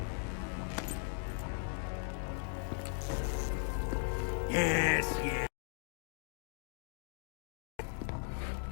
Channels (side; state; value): right; silent; 52 dB below the other